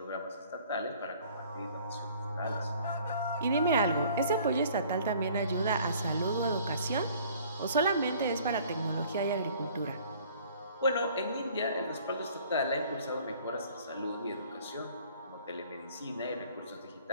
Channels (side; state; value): both; inverted; correlation -0.54